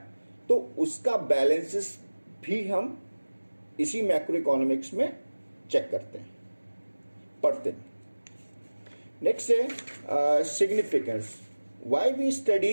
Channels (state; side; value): inverted; both; correlation -1.00